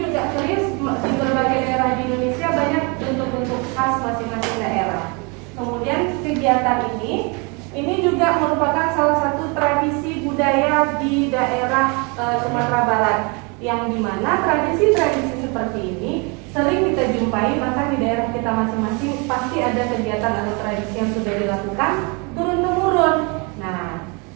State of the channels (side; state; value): left; quieter; 31.4 dB